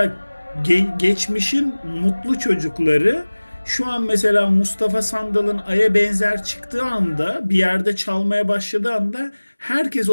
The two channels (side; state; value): both; inverted; correlation -1.00